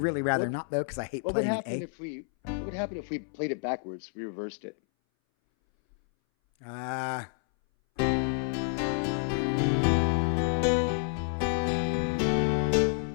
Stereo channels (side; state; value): right; silent; 58 dB below the other